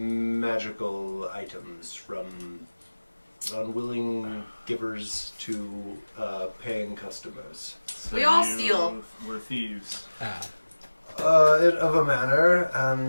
items from unwilling givers to paying customers. So We all you steal. We're thieves. Of a manner,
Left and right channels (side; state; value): both; inverted; correlation -1.00